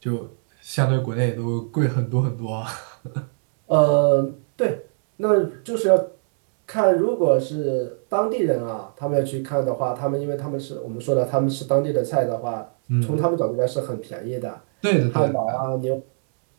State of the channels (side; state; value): left; silent; 64 dB below the other